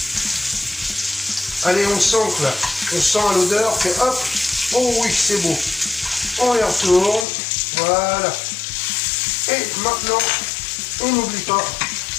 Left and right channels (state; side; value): drops out; right; at 7.2 s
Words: Allez, on sent là. On sent à l'odeur que hop. Oh oui, c'est beau. On les retourne. Voilà. Et maintenant, on n'oublie pas